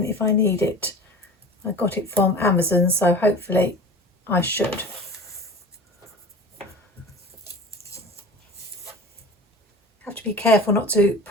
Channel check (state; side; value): normal; both; correlation 0.37